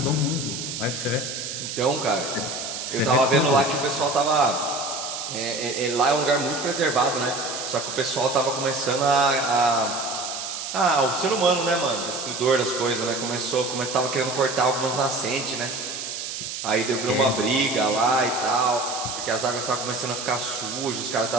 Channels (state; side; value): noise; right; hiss, 6 dB below the sound